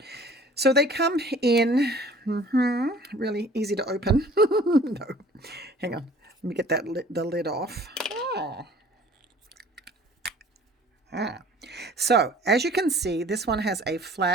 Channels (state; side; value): normal; both; correlation 0.50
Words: So they come in, really easy to open. No, hang on. Let me get the lid off. So as you can see, this one has a